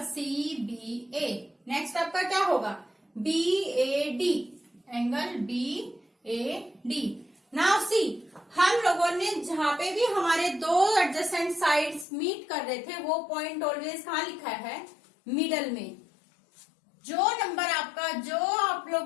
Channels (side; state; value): right; drops out; at 12.1 s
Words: C B A. Next आपका क्या होगा B A D, angle B A D. Now see, हम लोगों ने जहां पे भी हमारे 2 एडजेसेंट साइड्स मीट कर रहे थे, वो पॉइंट ऑलवेज कहाँ लिखा है, मिडल में। जो नंबर आपका, जो आप